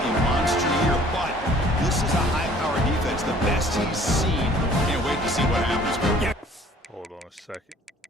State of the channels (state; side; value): normal; both; correlation 0.54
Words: a monster year, but this is a high-powered defense, the best he's seen. Can't wait to see what happens. Hold on a second.